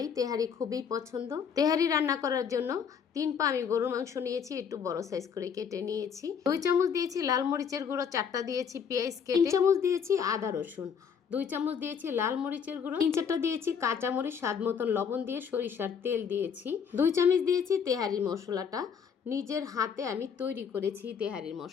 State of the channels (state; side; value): quieter; right; 6.9 dB